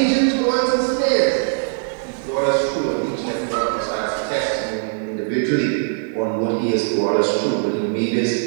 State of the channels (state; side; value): silent; left; digital silence